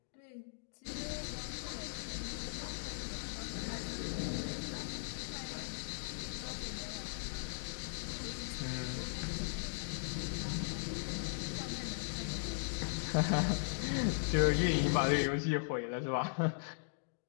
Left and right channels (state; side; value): silent; right; digital silence